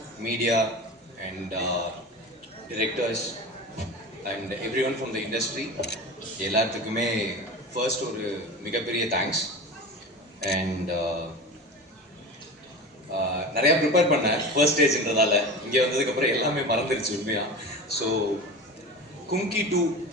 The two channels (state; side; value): normal; both; correlation 0.30